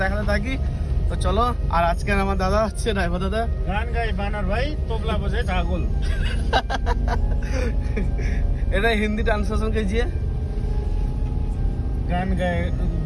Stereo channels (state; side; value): identical; both; correlation 1.00